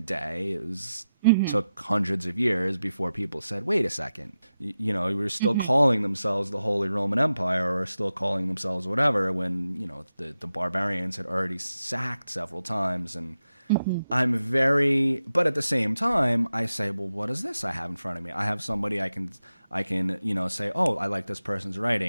day. It was took hundreds of years before people said, wait a second, we were still calling themselves the Holy Roman Empire, or still calling themselves whatever, when, the barbarians had already sacked several times. And but at the same time, I say, well, what is this I have in front of me? I have somebody I can say, oh, I like this person's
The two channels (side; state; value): both; inverted; correlation -0.91